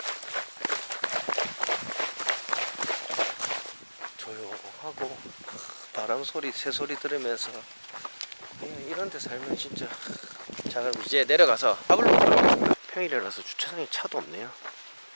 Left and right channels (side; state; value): both; inverted; correlation -1.00